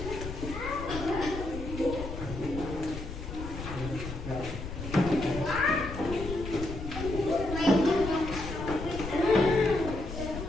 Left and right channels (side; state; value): left; noise; rumble, 8 dB below the sound